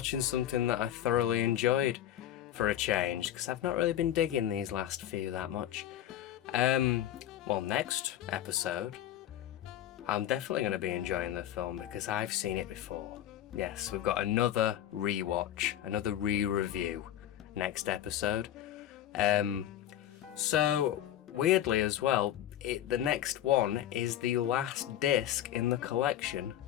something that I thoroughly enjoyed for a change, because I've not really been digging these last few that much. Well, next episode I'm definitely going to be enjoying the film because I've seen it before. Yes, we've got another rewatch, another re-review next episode. So weirdly as well, the next one is the last disc in the collection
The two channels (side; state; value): right; quieter; 11.7 dB